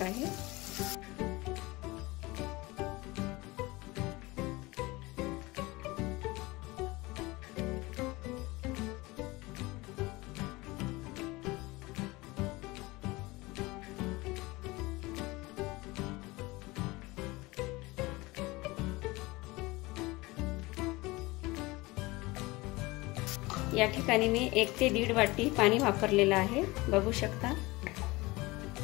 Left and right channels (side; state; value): right; quieter; 22.0 dB